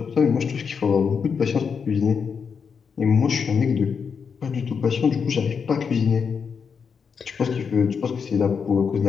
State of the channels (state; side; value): quieter; right; 6.2 dB